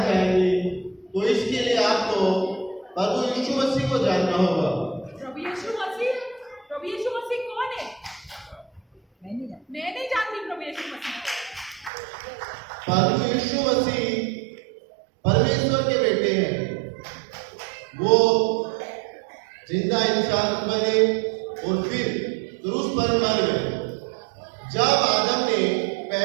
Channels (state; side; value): drops out; left; at 11.9 s